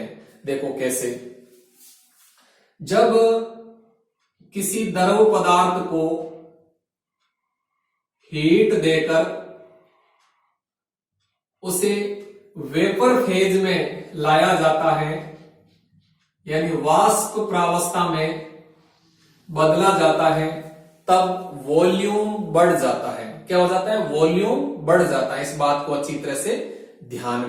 देखो कैसे, जब किसी द्रव पदार्थ को हीट देकर उसे वेपर फेज में लाया जाता है, यानी वाष्प प्रावस्था में बदला जाता है, तब वॉल्यूम बढ़ जाता है। क्या हो जाता है, वॉल्यूम बढ़ जाता है। इस बात को अच्छी तरह से ध्यान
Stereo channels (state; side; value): identical; both; correlation 1.00